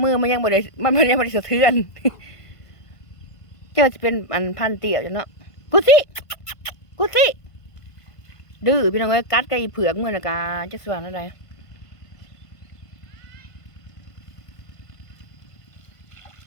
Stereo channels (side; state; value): right; late; 1.5 ms